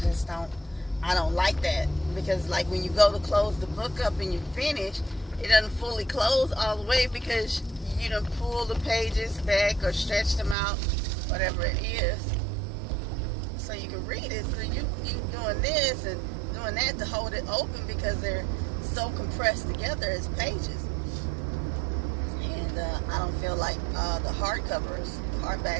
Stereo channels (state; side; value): drops out; left; at 10.6 s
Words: like that, because like when you go to close the book up and you finish, it doesn't fully close all the way because you done pull the pages back or stretch them out, whatever it is, so you can read it. So you doing this and doing that to hold it open because they're so compressed together as pages. And I don't feel like the